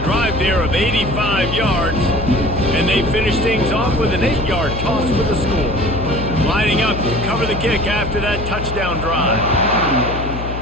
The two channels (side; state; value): left; noise; hum, 7 dB below the sound